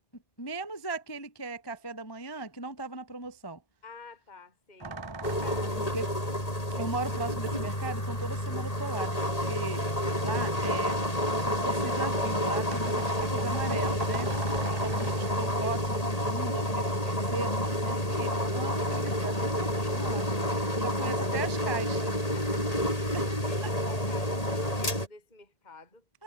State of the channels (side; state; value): right; late; 1.8 ms